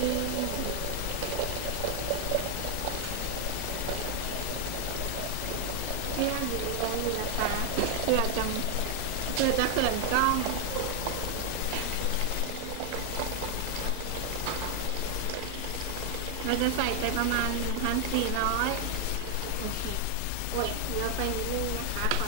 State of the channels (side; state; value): both; different; correlation 0.00